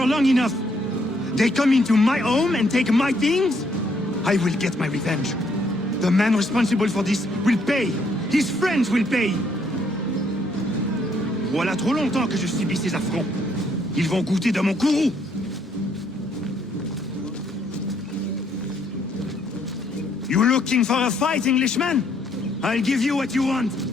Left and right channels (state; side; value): normal; both; correlation 0.69